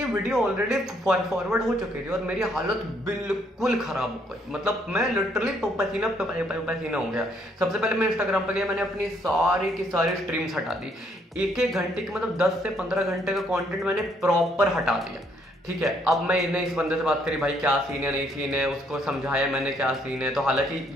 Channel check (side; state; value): both; normal; correlation 0.69